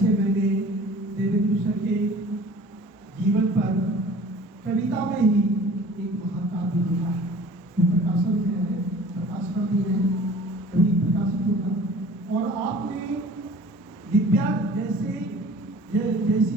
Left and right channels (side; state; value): both; normal; correlation 0.46